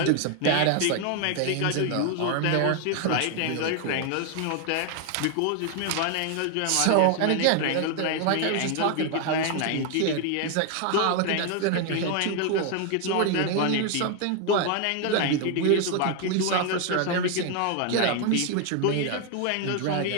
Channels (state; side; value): different; both; correlation 0.01